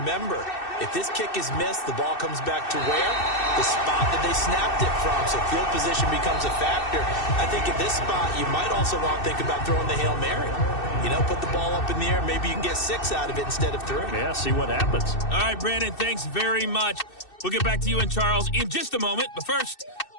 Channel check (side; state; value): right; late; 2.6 ms